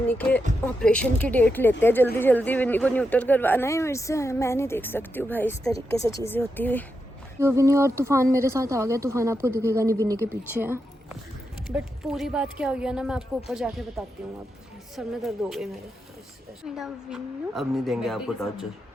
के ऑपरेशन की डेट लेते हैं जल्दी जल्दी, विन्नी को न्यूटर करवाना है मेरे से। मैं नहीं देख सकती हूँ भाई इस तरीके से चीज़ें होती हुई। तो विन्नी और तूफान मेरे साथ आ गया, तूफान आपको दिखेगा नहीं, विन्नी के पीछे है। बट पूरी बात क्या हुई है ना, मैं आपको ऊपर जाके बताती हूँ। अब सर में दर्द हो गई मेरे। मेरा विन्नू अब नहीं देंगे आपको टॉर्चर।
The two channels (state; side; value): normal; both; correlation 0.86